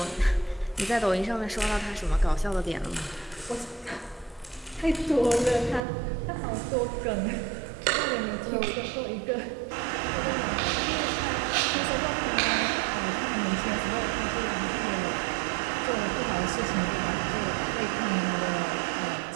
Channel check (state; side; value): drops out; left; at 5.8 s